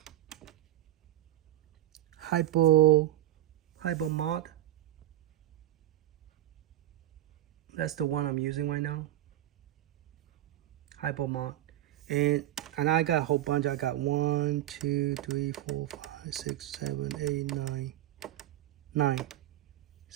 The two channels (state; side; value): quieter; left; 13.7 dB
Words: Hypo Mod. That's the one I'm using right now. Hypo Mod. And I got a whole bunch. I got 1, 2, 3, 4, 5, 6, 7, 8, 9.